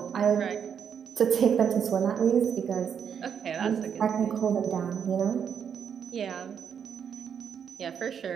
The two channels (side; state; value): left; quieter; 7.7 dB